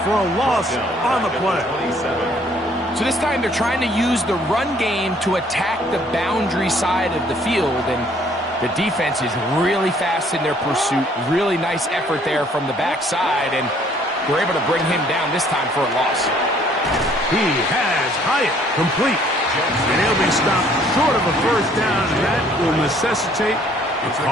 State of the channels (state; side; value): normal; both; correlation 0.61